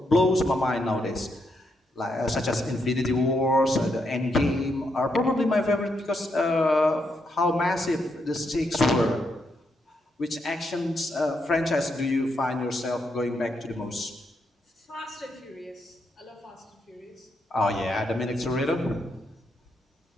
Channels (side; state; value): both; normal; correlation 0.80